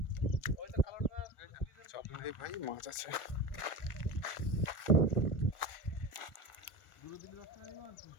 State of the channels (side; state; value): right; late; 1.4 ms